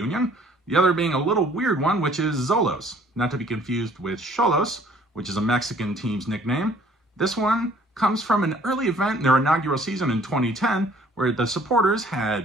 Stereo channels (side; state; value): both; normal; correlation 0.57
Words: the other being a little weird one, which is Xolos, not to be confused with Xolos, which is a Mexican team's nickname. This one comes from an early event in their inaugural season in 2010, where the supporters